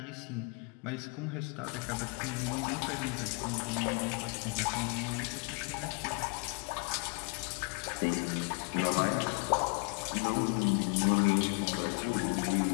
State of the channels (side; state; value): right; quieter; 34.7 dB